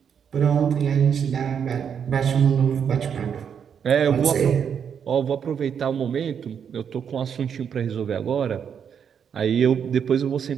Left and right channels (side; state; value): left; quieter; 7.6 dB